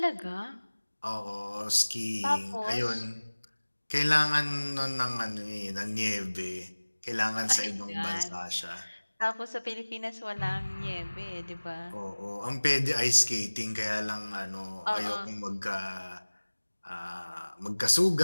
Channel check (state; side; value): inverted; both; correlation -1.00